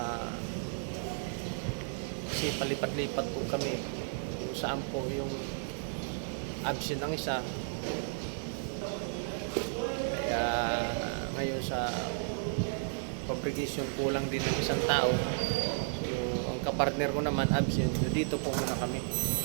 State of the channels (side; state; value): left; silent; digital silence